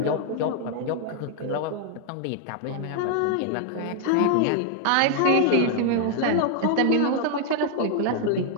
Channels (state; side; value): different; both; correlation 0.00